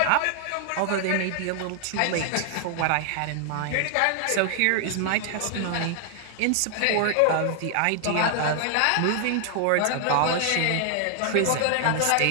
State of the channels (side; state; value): both; different; correlation 0.00